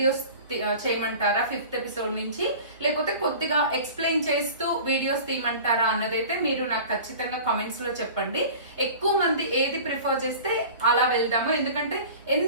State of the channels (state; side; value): inverted; both; correlation -0.39